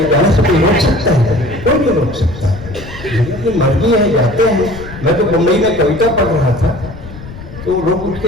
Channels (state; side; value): noise; left; rumble, 14 dB below the sound